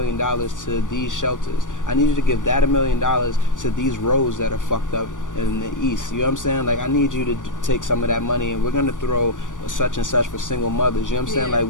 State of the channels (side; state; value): right; late; 0.87 ms